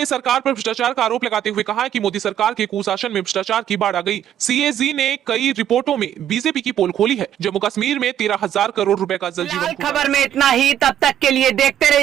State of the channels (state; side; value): quieter; left; 10.6 dB